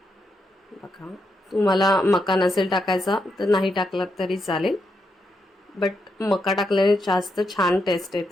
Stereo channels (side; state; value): both; normal; correlation 0.82